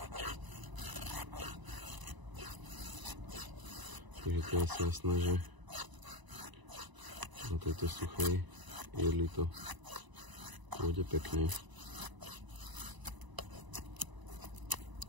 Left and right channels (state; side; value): late; left; 1.0 ms